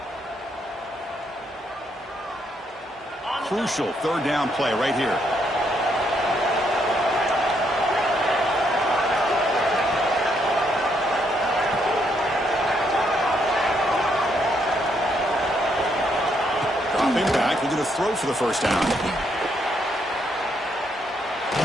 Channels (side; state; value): both; normal; correlation 0.74